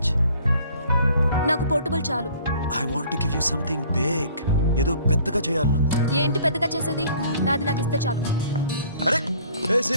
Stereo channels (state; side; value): inverted; both; correlation -0.54